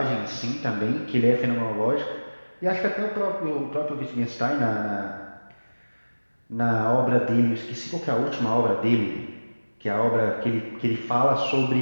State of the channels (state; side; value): inverted; both; correlation -1.00